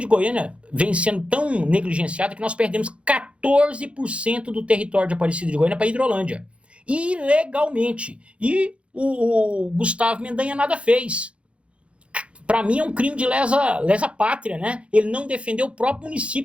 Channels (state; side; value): late; left; 0.060 ms